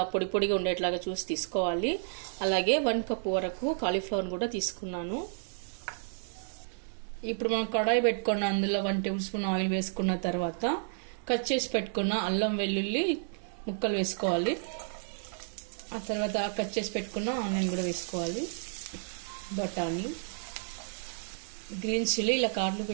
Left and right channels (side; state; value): left; silent; 57 dB below the other